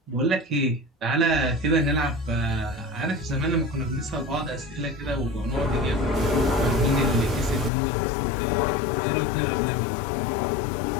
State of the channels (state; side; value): drops out; right; at 7.7 s